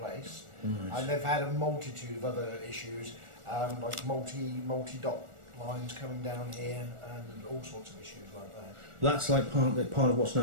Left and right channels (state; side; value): late; left; 1.4 ms